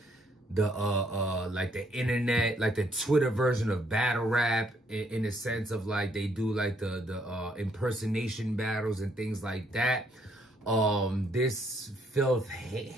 the internet, like the Twitter version of battle rap, in the sense of like they do like the impersonation battles and things like that. This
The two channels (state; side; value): normal; both; correlation 0.69